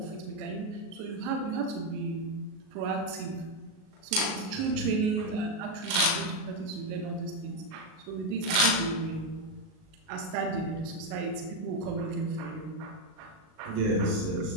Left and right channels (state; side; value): late; left; 38 ms